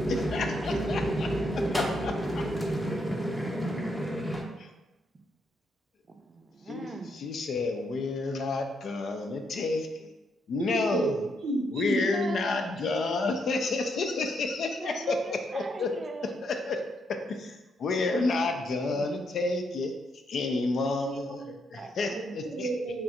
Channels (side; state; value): both; normal; correlation 0.77